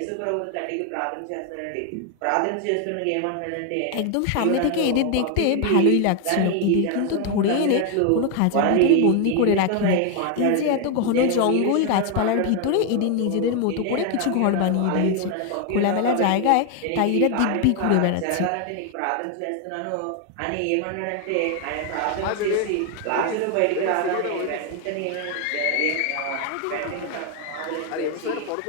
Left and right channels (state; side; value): different; both; correlation 0.01